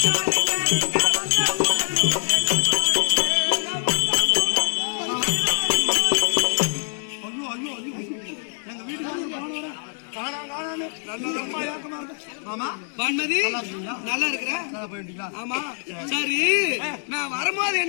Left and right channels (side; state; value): right; silent; 58 dB below the other